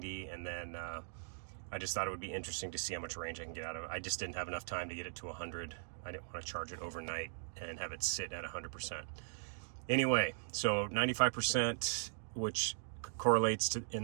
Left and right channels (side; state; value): left; silent; digital silence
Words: and then I just thought it would be interesting to see how much range I can get out of it. I just didn't have enough time to get it to 100. I didn't want to charge it overnight and have it sit at 100%. Anyway, so 95%, which correlates to, in